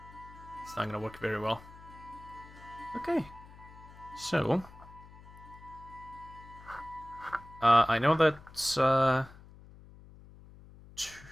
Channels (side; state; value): left; noise; hum, 20 dB below the sound